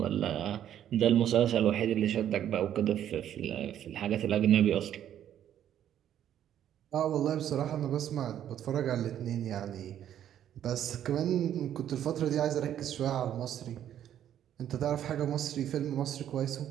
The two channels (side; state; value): left; quieter; 10.6 dB